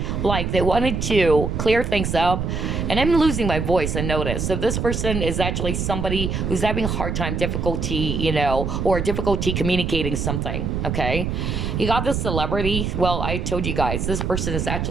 Like, they wanted to clear things up. And I'm losing my voice, I notice. So this person is actually somebody who's having a hard time, difficulty, or difficulty communicating something, okay? You got this celebrity. Well, I told you guys, this person is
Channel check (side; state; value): right; noise; rumble, 2 dB below the sound